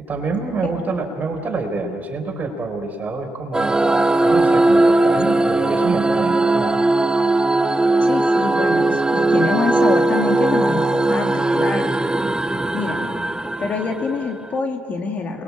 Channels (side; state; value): both; normal; correlation 0.89